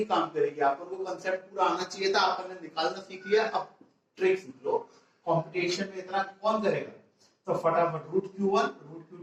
काम करेगी। आपको कंसेप्ट पूरा आना चाहिए था, आपने निकालना सीख लिया, अब ट्रिक सीख लो। कंपटीशन में इतना कौन करेगा, तो फटाफट root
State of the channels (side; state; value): both; identical; correlation 1.00